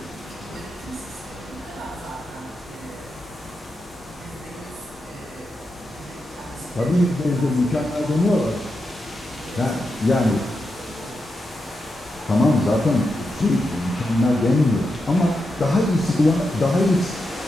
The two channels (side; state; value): both; normal; correlation 0.87